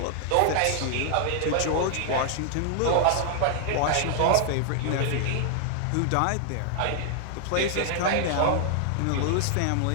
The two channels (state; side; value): different; both; correlation 0.00